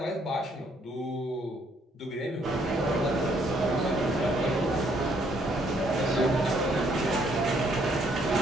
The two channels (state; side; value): normal; both; correlation 0.68